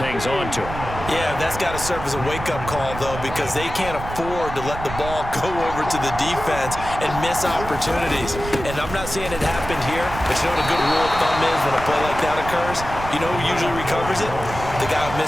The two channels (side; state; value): right; noise; rumble, 9 dB below the sound